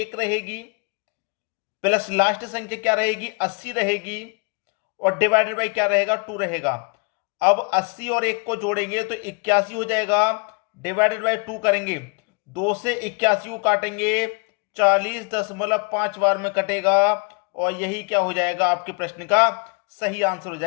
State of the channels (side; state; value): right; quieter; 33.7 dB